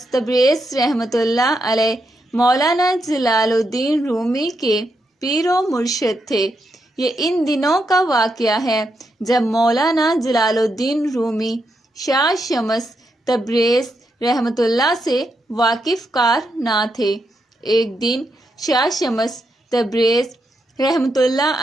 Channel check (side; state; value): both; normal; correlation 0.82